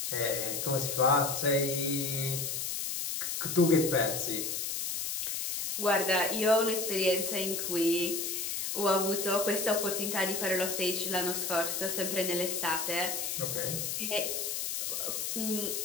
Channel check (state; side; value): noise; left; hiss, 2 dB below the sound